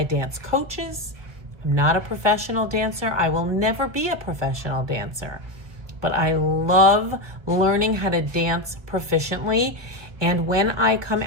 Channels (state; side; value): late; left; 1.5 ms